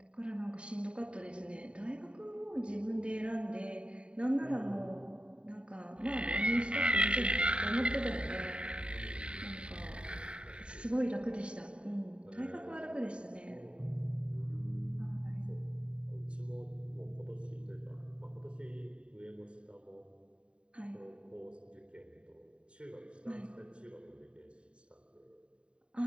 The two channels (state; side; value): late; left; 0.054 ms